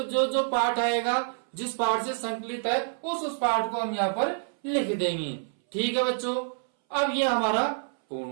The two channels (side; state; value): left; silent; 60 dB below the other